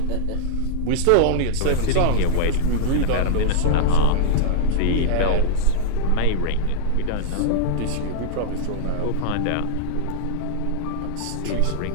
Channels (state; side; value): different; both; correlation -0.01